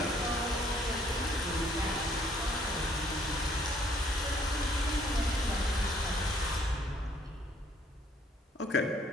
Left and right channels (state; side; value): normal; both; correlation 0.64